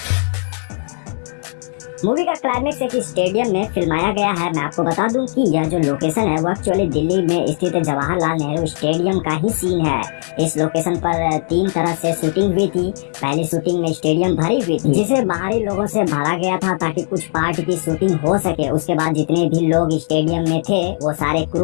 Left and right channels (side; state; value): right; silent; 63 dB below the other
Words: मूवी का क्लाइमेक्स एक स्टेडियम में फिल्माया गया है। मैं आपको बता दूं कि यह जो लोकेशन है वो एक्चुअली दिल्ली में स्थित जवाहरलाल नेहरू स्टेडियम का ही सीन है। इस लोकेशन पर 3 तरह से शूटिंग हुई थी। पहली शूटिंग में स्टेडियम भरी हुई थी, जिसे बाहरी लोगों से भरा गया था ताकि कुछ पार्ट की शूटिंग हो सके। उसके बाद जितने भी लोग स्टेडियम में थे वो सारे